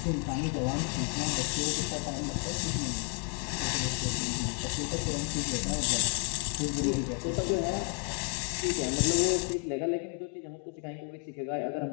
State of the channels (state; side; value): quieter; right; 37.1 dB